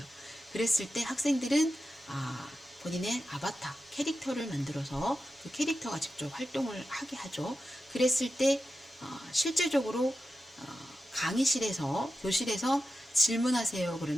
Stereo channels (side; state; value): both; normal; correlation 0.91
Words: 그랬을 때 학생들은 본인의 아바타, 캐릭터를 만들어서 그 캐릭터가 직접 활동을 하게 하죠. 그랬을 때 실제적으로 강의실에서, 교실에서 질문하세요.